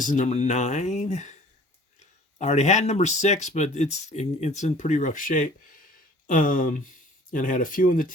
is number 9. I already had number 6, but it's in pretty rough shape. And I had a few in the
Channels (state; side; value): normal; both; correlation 0.50